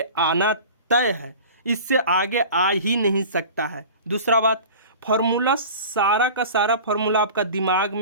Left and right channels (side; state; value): both; inverted; correlation -0.38